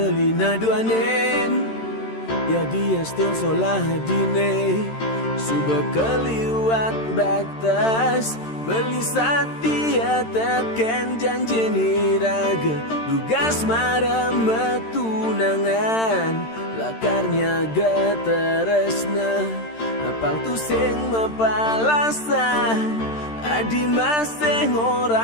naduanen. Ya dia stun solah dine suba keliwat batas, beli setia teken janji niraga, tugas marah metunangan, lakarnya gateresna apang tu sing mapalasan. Adi masih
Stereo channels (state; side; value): late; right; 13 ms